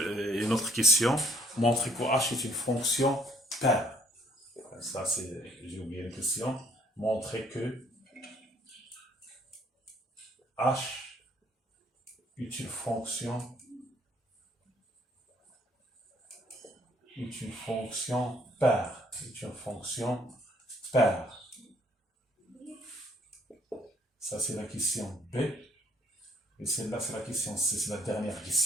autre question, montrer que h est une fonction paire. Ça, j'ai oublié la question. Montrer que h est une fonction paire. C'est une fonction paire. Ça, c'est la question B. Et celle-là, c'est la question C, c'est la dernière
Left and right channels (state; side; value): normal; both; correlation 0.64